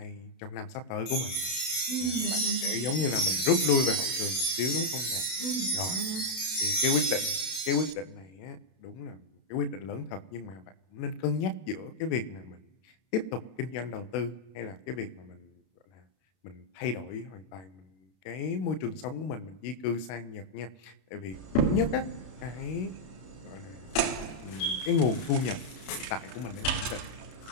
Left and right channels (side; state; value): right; late; 32 ms